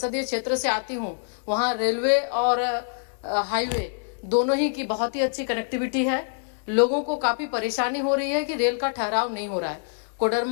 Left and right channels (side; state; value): right; silent; digital silence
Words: क्षेत्र से आती हूँ वहाँ रेलवे और हाईवे दोनों ही की बहुत ही अच्छी कनेक्टिविटी है। लोगों को काफ़ी परेशानी हो रही है कि रेल का ठहराव नहीं हो रहा है।